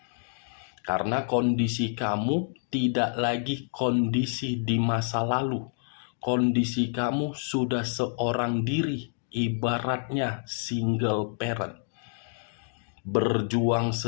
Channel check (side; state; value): right; silent; digital silence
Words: Karena kondisi kamu tidak lagi kondisi di masa lalu. Kondisi kamu sudah seorang diri, ibaratnya single parent. Berjuang